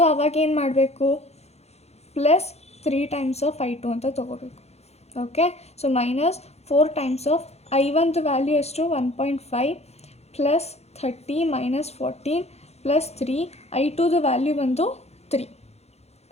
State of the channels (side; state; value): right; late; 0.31 ms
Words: ಅವಾಗ ಏನು ಮಾಡಬೇಕು? +3 ಟೈಮ್ಸ್ ಆಫ್ I2 ಅಂತ ತೊಗೋಬೇಕು. Okay. So -4 times of I1 value ಎಷ್ಟು? 1.5 +30 -14 +3 I2 ವ್ಯಾಲ್ಯೂ ಬಂದು 3.